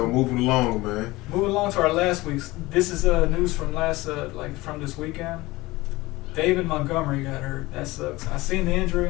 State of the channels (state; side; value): quieter; right; 20.2 dB